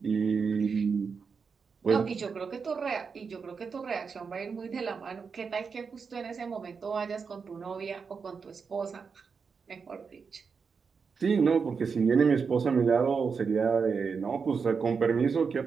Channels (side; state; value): left; quieter; 5.6 dB